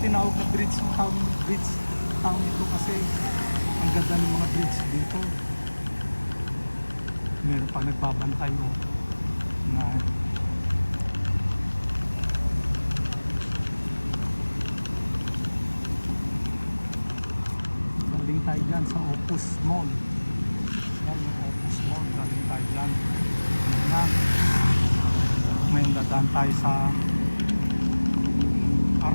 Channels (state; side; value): inverted; both; correlation -1.00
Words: tinawag na Bridgetown ito kasi ang ganda ng mga bridge dito. Meron pa nagbabantay na galing tayo dyan sa Opus Mall. Yan yung Opus Mall, galing tayo dyan. Yan. May dadaan tayo sa